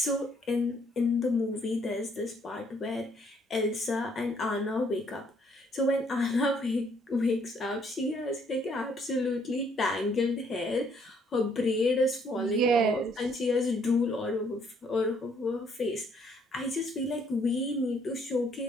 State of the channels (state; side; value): normal; both; correlation 0.66